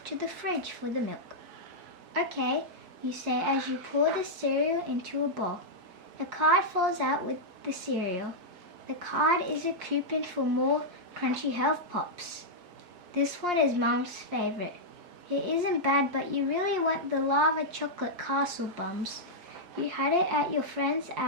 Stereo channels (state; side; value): late; left; 5.7 ms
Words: to the fridge for the milk. "Okay," you say as you pour the cereal into a bowl. A card falls out with the cereal. The card is a coupon for more Crunchy Health Pops. This one is Mum's favorite. It isn't bad, but you really want the lava chocolate castle bums. You had it at your friends